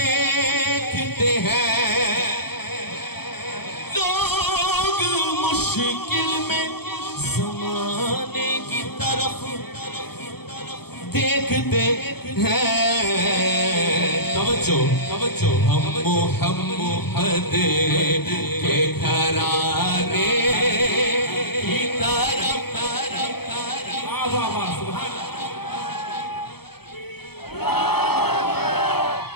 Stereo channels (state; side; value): late; right; 0.96 ms